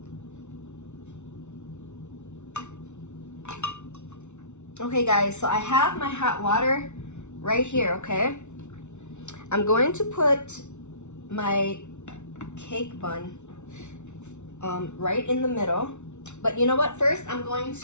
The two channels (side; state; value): right; late; 0.82 ms